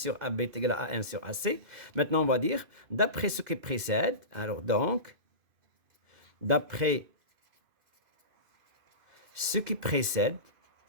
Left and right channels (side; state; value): left; late; 2.5 ms